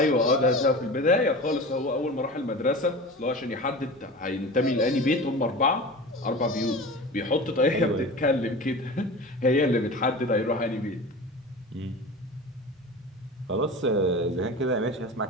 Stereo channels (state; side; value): normal; both; correlation 0.33